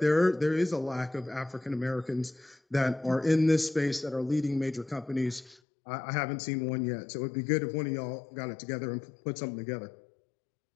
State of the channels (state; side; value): drops out; right; at 5.6 s